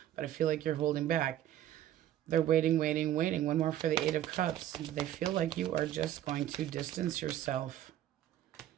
but I feel like you're holding back. They're waiting. One more for the 8 of Cups. They feel like you are just going to distance yourself.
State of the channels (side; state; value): left; quieter; 12.1 dB